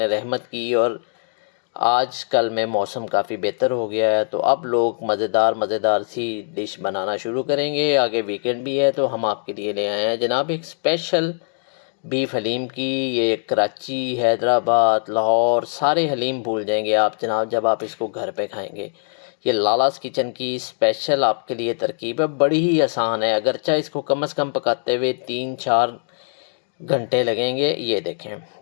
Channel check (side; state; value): right; silent; digital silence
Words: रहमत की और आज कल में मौसम काफ़ी बेहतर हो गया है। तो अब लोग मज़ेदार सी डिश बनाना शुरू करेंगे। आगे वीकेंड भी है तो हम आपके लिए ले आए हैं जनाब एक स्पेशल बीफ हलीम की। ये कराची, हैदराबाद, लाहौर सारे हलीम भूल जाएंगे आप जनाब जब आप इसको घर पे खाएंगे। ये लालास किचन की स्पेशल आपके लिए तरकीब है, बड़ी ही आसान है। अगरचा इसको कम से कम पकाते हुए 3-4 घंटे लगेंगे। ये देखें,